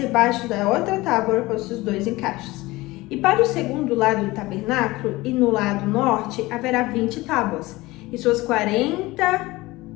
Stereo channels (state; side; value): quieter; right; 20.2 dB